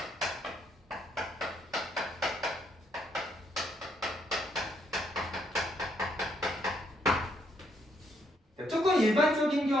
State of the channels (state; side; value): normal; both; correlation 0.73